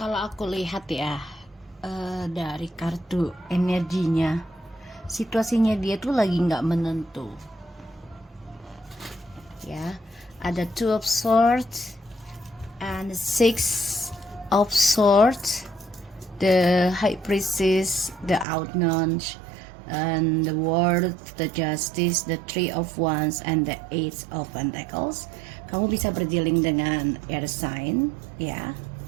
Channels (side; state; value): left; drops out; at 18.4 s